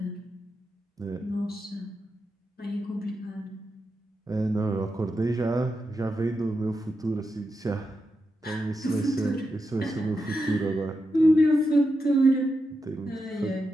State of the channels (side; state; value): both; normal; correlation 0.87